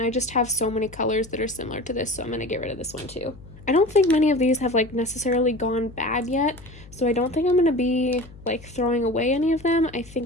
I just have so many colors that are similar to this, so I'm gonna get rid of this one too. I don't think many of these have like necessarily gone bad yet, so I don't think I'm gonna be like throwing away any of them. I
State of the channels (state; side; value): noise; left; hum, 19 dB below the sound